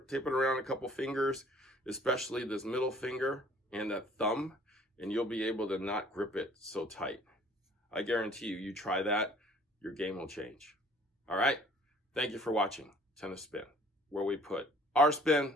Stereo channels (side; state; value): both; normal; correlation 0.55